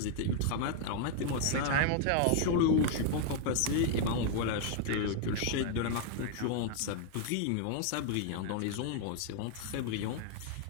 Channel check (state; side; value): different; both; correlation 0.00